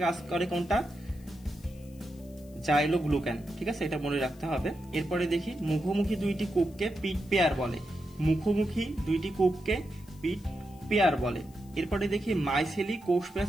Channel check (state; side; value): noise; left; hiss, 27 dB below the sound